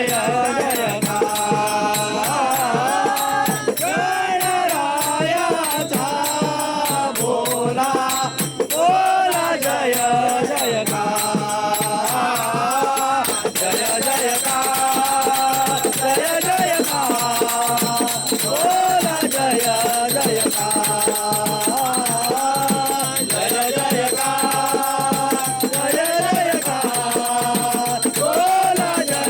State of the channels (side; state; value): both; identical; correlation 1.00